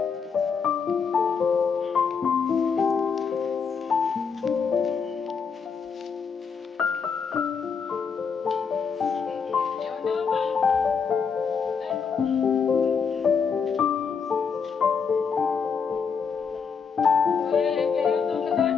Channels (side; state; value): right; quieter; 6.0 dB